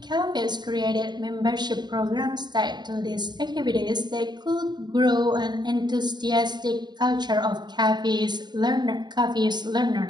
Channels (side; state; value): left; late; 0.21 ms